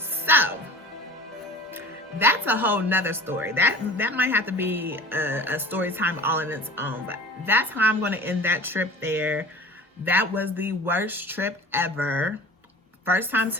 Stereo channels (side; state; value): both; normal; correlation 0.41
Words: that's a whole nother story. That might have to be a story time all in its own, but that's how I'm going to end that trip there. That was the worst trip ever. First time